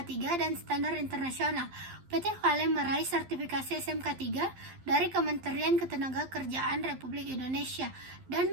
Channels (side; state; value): left; late; 12 ms